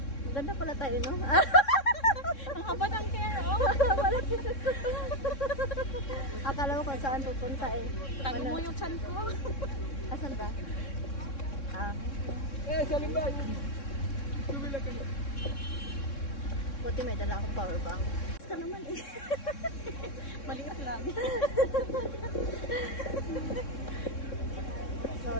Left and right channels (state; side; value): late; right; 3.6 ms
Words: Maganda pala tayo, no? Ang haba ng hair, oh. Akala ko kung saan pupunta eh. Tago mo yung chan ko. Asan ba? Salim ba? Tumila ka na. Buti may dala akong power bank. Basta naman eh. Maliit lang.